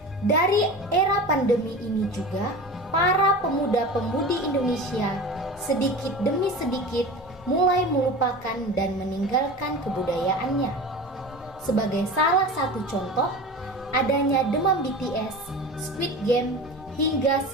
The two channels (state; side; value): normal; both; correlation 0.33